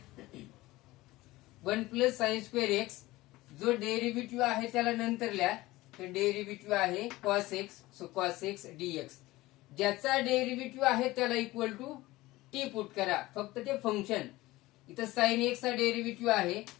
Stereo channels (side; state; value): right; quieter; 18.8 dB